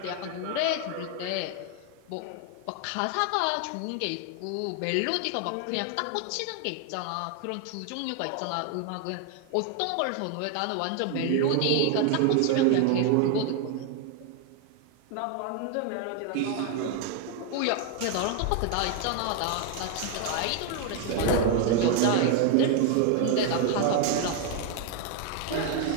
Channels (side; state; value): both; different; correlation 0.01